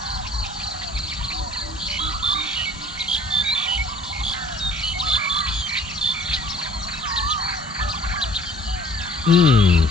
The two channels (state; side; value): normal; both; correlation 0.51